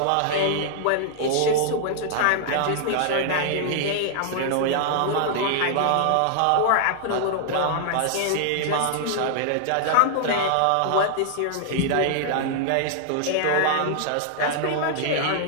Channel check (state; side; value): different; both; correlation -0.01